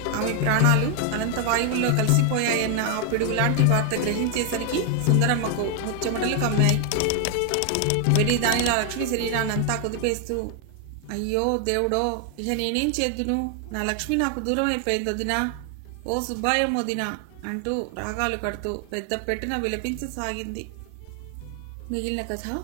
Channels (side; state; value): both; different; correlation 0.00